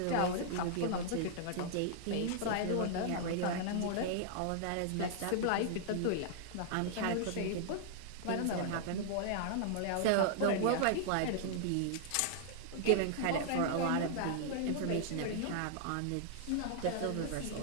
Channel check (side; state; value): both; different; correlation -0.01